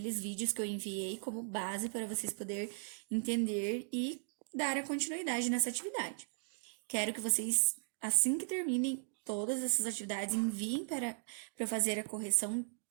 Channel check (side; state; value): left; silent; digital silence